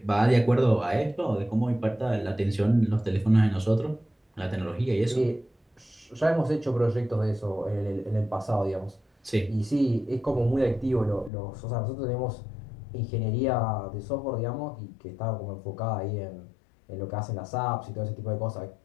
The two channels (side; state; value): right; drops out; at 11.3 s